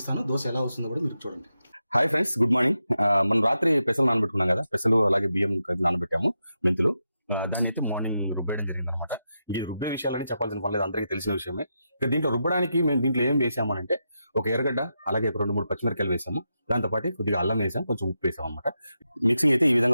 దోశ ఎలా వస్తుందో కూడా మీరు చూడండి. Hi friends, good morning. మనం రాత్రి పెసలు నానబెట్టుకున్నాం కదా, పెసలు అలాగే బియ్యం నానబెట్టాము, మెంతులు. దాన్ని అయితే మార్నింగ్ రుబ్బేయడం జరిగింది అనమాట. ఈ రుబ్బే విషయాలని చెప్పాల్సిన పని లేదు, అందరికీ తెలిసిన విషయమే. ఇక దీంట్లో రుబ్బడానికి మేము దీంట్లో ఏం వేసామనంటే, ఒక ఎర్రగడ్డ అలాగే ఒక 2-3 పచ్చిమిరకాయలు వేసాము. దాంతోపాటు కొద్దిగా అల్లం వేసాం, కొంచెం ఉప్పు వేసాం అనమాట. మిక్సింగ్ అయితే ఈ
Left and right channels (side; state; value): both; inverted; correlation -0.87